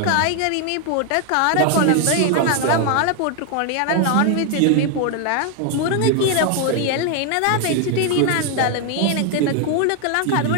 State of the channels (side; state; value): both; different; correlation 0.01